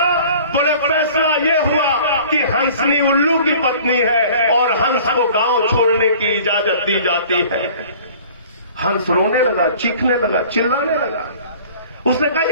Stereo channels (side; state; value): both; inverted; correlation -0.48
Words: बोले फैसला ये हुआ कि हंसनी उल्लू की पत्नी है और हंस को गांव छोड़ने की इजाजत दी जाती है। हंस रोने लगा, चीखने लगा, चिल्लाने लगा। उसने कहा,